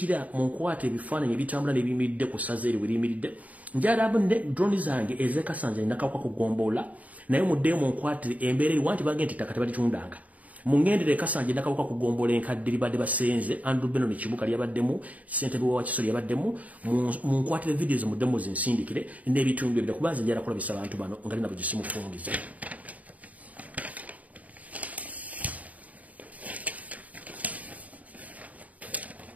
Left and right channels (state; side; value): late; left; 0.071 ms